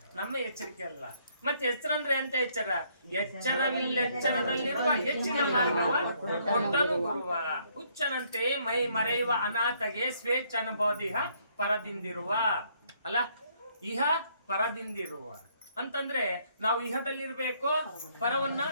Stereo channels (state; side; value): inverted; both; correlation -0.67